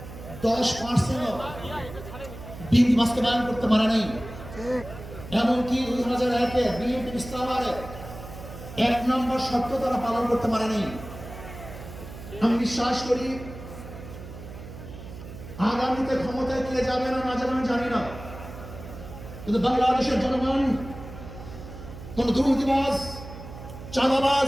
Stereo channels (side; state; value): right; noise; hum, 13 dB below the sound